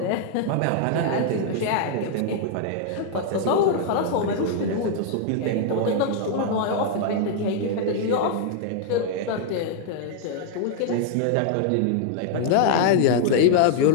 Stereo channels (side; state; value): both; different; correlation -0.01